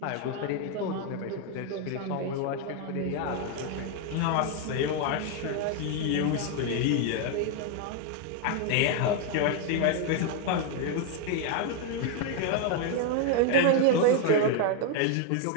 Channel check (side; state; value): both; different; correlation 0.01